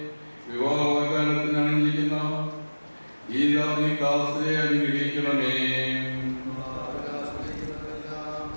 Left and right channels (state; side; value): inverted; both; correlation -1.00